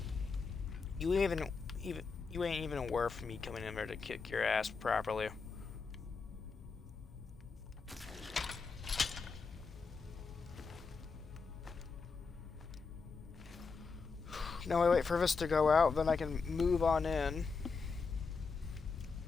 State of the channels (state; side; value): quieter; right; 4.8 dB